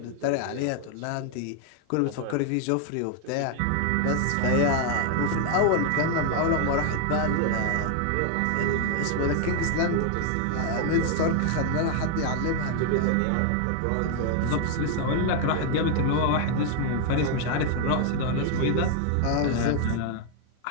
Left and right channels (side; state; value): both; different; correlation 0.00